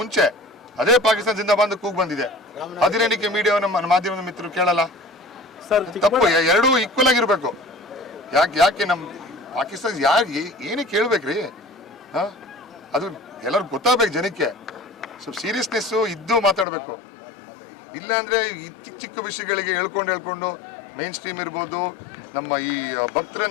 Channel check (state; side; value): drops out; right; at 16.7 s